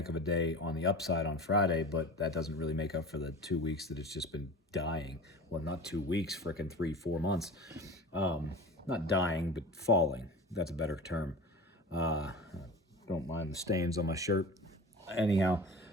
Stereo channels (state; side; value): normal; both; correlation 0.34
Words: of a day on the upside on Friday, but that doesn't really make up for the 2 weeks that it's just been dying. Well, not 2 weeks, freaking 3, 4 months. Not dying, but falling. That's a better term. Uh, don't mind the stains on my shirt. Anyhow,